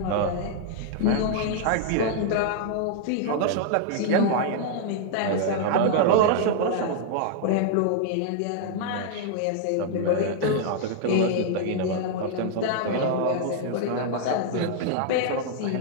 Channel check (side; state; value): both; different; correlation -0.01